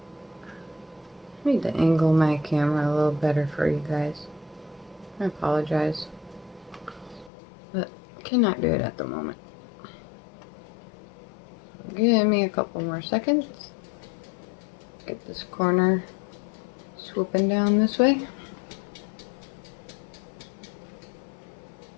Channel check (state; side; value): drops out; right; at 7.3 s